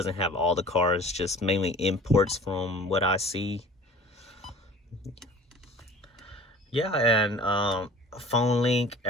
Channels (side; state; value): both; normal; correlation 0.44